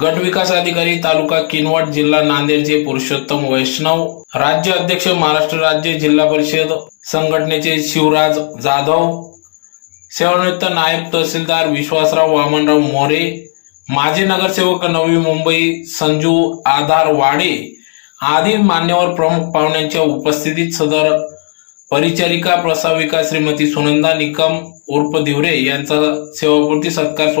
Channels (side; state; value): right; silent; 62 dB below the other